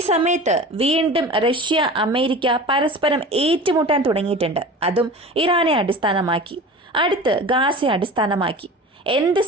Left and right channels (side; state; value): both; normal; correlation 0.36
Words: സമയത്ത് വീണ്ടും റഷ്യ അമേരിക്ക പരസ്പരം ഏറ്റുമുട്ടാൻ തുടങ്ങിയിട്ടുണ്ട്. അതും ഇറാനെ അടിസ്ഥാനമാക്കി, അടുത്ത് ഗാസയെ അടിസ്ഥാനമാക്കി. എന്ത്